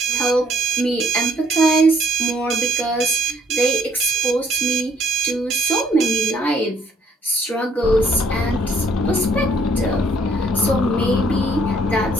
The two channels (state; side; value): normal; both; correlation 0.65